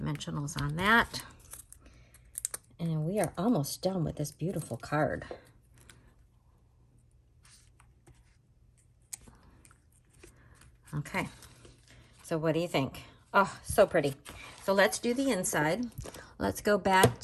on that. And we are almost done with this beautiful card. Okay, so what do you think? Oh, so pretty. So let's do the inside. Let's go back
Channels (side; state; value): both; identical; correlation 1.00